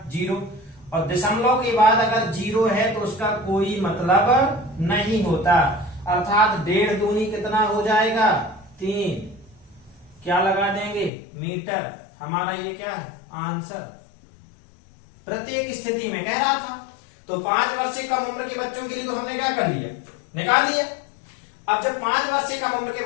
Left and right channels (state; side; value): drops out; right; at 11.1 s